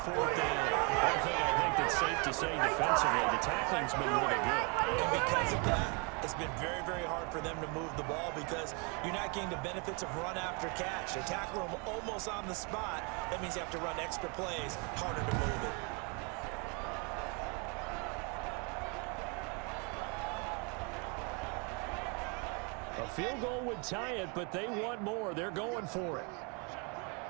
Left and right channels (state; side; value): quieter; left; 33.6 dB